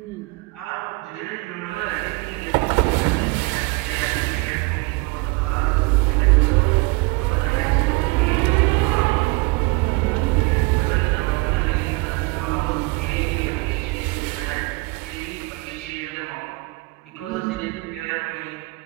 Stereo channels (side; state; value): left; quieter; 25.6 dB